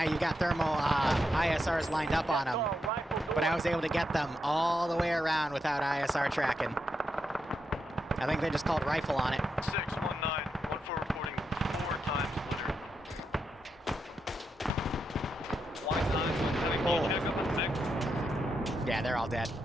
you've got thermal ISRs lined up on them. But I was able to get them all the way around without ISR tracking. I think they just called rifle on it. 619, 14 reporting 4 times litter. 1-9, yeah, they're all dead.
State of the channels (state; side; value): normal; both; correlation 0.84